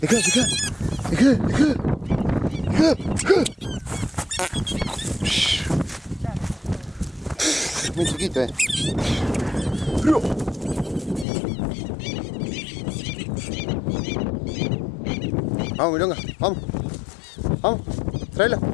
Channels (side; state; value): right; drops out; at 11.2 s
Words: Muy chiquito, Vamos, milonga, vamos. Vamos, tráelo,